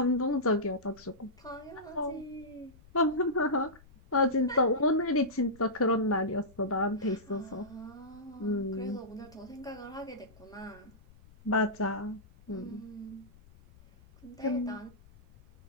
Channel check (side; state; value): left; noise; rumble, 24 dB below the sound